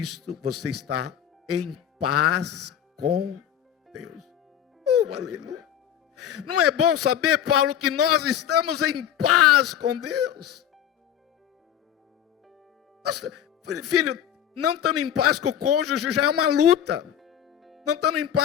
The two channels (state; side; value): quieter; right; 10.0 dB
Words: você está em paz com Deus. Aleluia. Não é bom saber, Paulo, que nós estamos em paz com Deus? Nossa, filho, não estando em paz com o cônjuge já é uma luta, não estando em